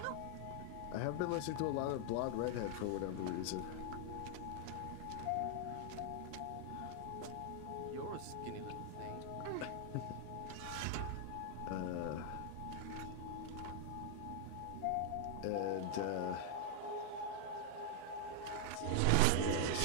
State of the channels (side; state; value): both; different; correlation 0.00